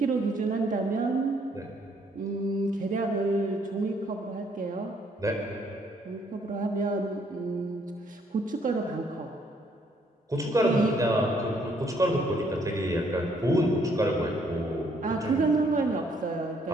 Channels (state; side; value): normal; both; correlation 0.67